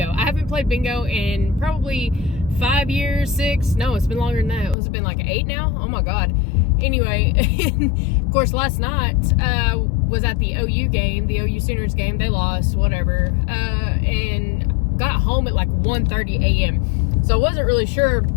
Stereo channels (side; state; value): right; drops out; at 4.8 s